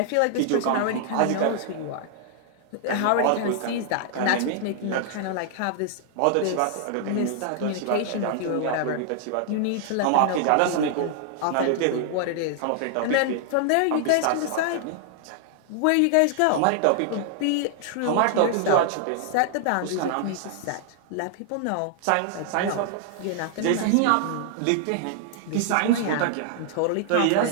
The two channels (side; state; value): both; different; correlation -0.01